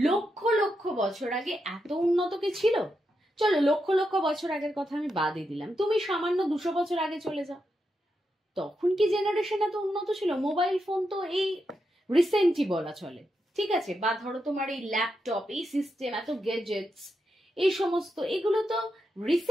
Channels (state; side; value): normal; both; correlation 0.85